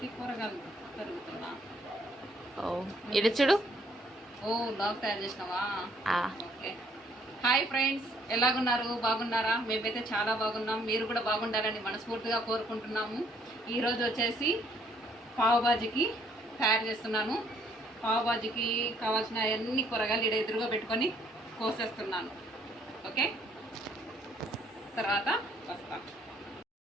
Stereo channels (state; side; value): normal; both; correlation 0.66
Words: కూరగాయలు తరుగుతున్నా. ఓ ఇటు చూడు. ఓ లాగ్ తయారు చేసినావా? ఓకే. హాయ్ ఫ్రెండ్స్, ఎలాగున్నారు? బాగున్నారా? మేమైతే చాలా బాగున్నాం. మీరు కూడా బాగుండాలని మనస్ఫూర్తిగా కోరుకుంటున్నాము. ఈరోజు వచ్చేసి పావు బాజీకి తయారు చేస్తున్నాను. పావు బాజీకి కావాల్సిన అన్ని కూరగాయలు ఇక్కడ ఎదురుగా పెట్టుకొని కోసేస్తున్నాను. ఓకే, తర్వాత వస్తాం.